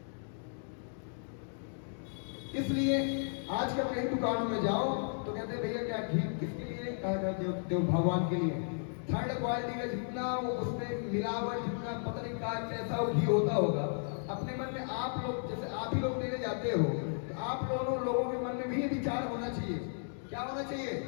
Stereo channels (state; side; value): silent; right; digital silence